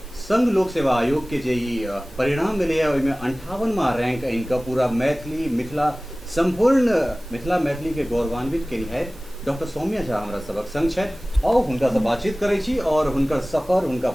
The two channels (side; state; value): both; normal; correlation 0.98